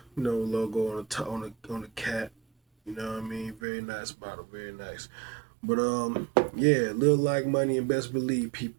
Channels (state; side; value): drops out; left; at 3.6 s